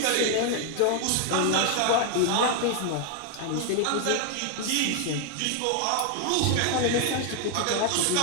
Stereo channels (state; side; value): different; both; correlation 0.00